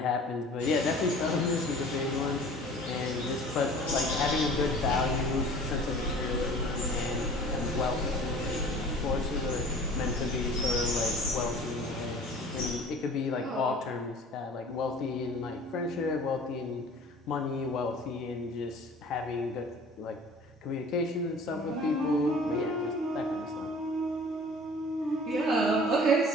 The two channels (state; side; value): normal; both; correlation 0.46